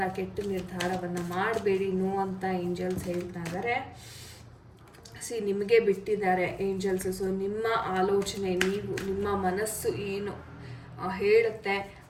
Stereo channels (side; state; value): both; identical; correlation 1.00